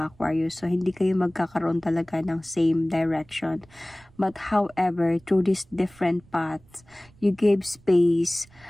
Aquarius. So, hindi kayo magkakaroon talaga ng same direction. But however, through these different paths, you gave space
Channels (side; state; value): right; noise; rumble, 28 dB below the sound